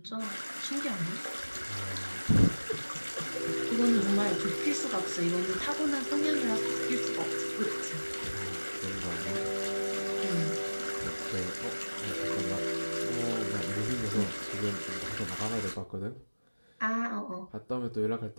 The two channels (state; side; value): inverted; both; correlation -1.00